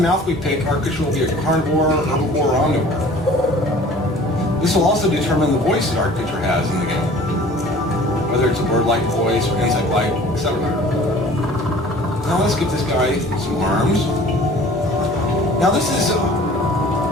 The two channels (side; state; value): both; normal; correlation 0.48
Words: the mouth we pick, our creature will be a carnivore, herbivore, or omnivore. This will also determine the voice that our creature has in the game, whether it's a bird-like voice or insect-like, etc. Now let's give this guy some arms. Now this is